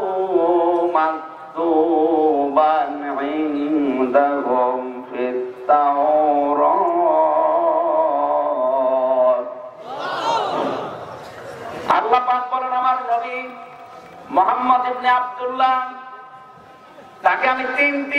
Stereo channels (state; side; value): identical; both; correlation 1.00